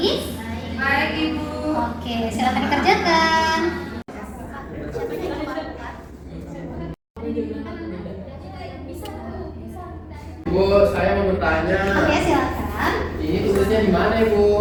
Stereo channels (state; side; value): identical; both; correlation 1.00